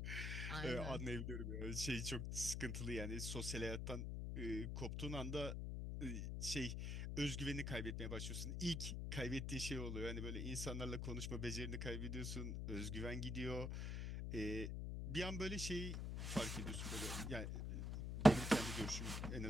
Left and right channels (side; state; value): left; noise; hum, 2 dB below the sound